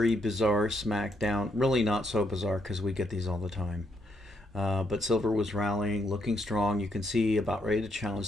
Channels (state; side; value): normal; both; correlation 0.76